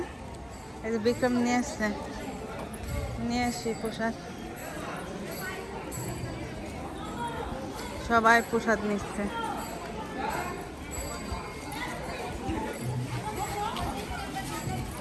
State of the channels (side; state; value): both; identical; correlation 1.00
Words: এই যে বিক্রম নিয়ে আসছে, নিয়ে আসি প্রসাদ। সবাই প্রসাদ নিচ্ছে।